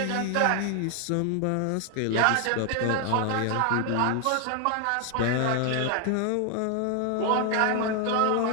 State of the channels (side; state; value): both; different; correlation 0.01